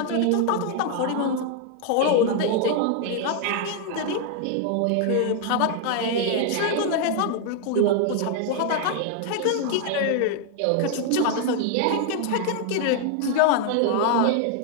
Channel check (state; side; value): different; both; correlation 0.00